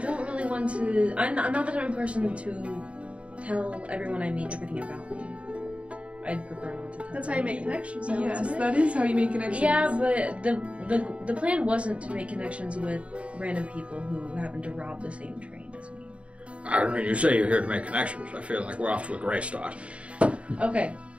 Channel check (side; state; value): left; late; 0.062 ms